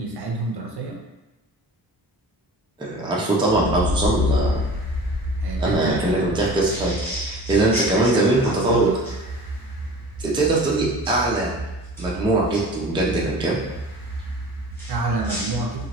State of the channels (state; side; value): normal; both; correlation 0.40